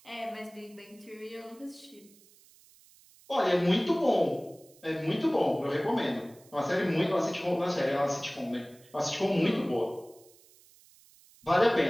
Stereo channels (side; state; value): right; noise; hiss, 27 dB below the sound